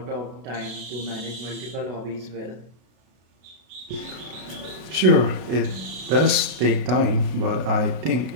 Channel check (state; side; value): late; left; 32 ms